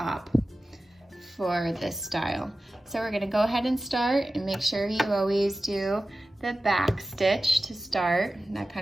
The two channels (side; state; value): both; normal; correlation 0.95